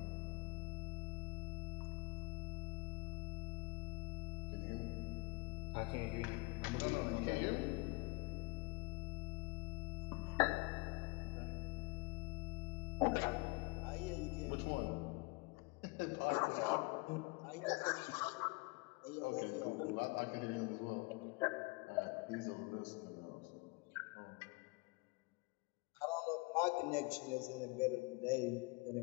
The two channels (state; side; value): quieter; right; 26.5 dB